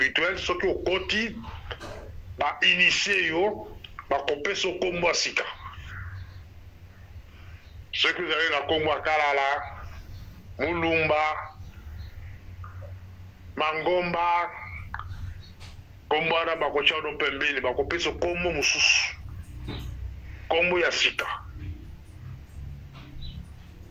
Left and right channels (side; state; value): both; identical; correlation 1.00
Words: ce qui est au côté, va initier, va couper ce combo sika. Ceux qui vous avez la combo Kalala, Mulumba, Mangomba, combo na bakocha no pembeni, va couper ce combo mususu. Combo ya sika.